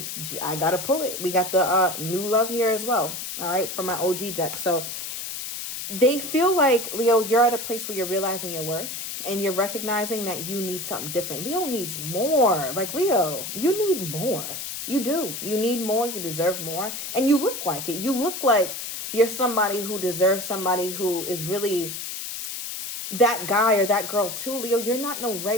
I got to pull it. We got the new love here as well. All right, from my OG deck. So they feel like, Leo, you're at a place where you're realizing your worth. And you're recognizing that you need something different. Leo needs more. Like, Leo, you need more. You do. You need more. You deserve more. And you look like it. You look like you're somebody who deserves somebody who is really that guy or that girl too, Leo. You're not no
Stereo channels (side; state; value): left; noise; hiss, 6 dB below the sound